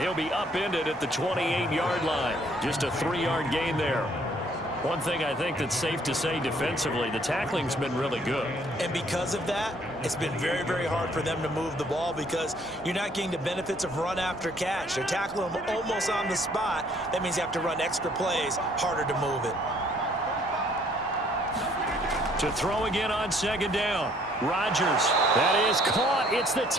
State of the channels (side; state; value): both; normal; correlation 0.63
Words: be upended at the 28-yard line. Just a 3-yard gain there. One thing I think that's safe to say defensively, the tackling's been really good. And because of that, it's been very, very hard for them to move the ball because you're not getting the benefits of run after catch. They're tackling them almost on the spot. That means you have to run extra plays, harder to move it. To throw again on 2nd down. Rodgers. That is caught. It's the